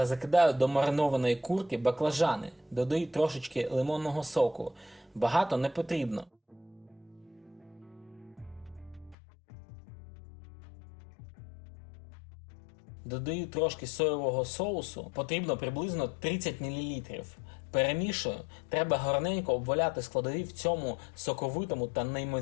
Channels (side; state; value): right; drops out; at 9.2 s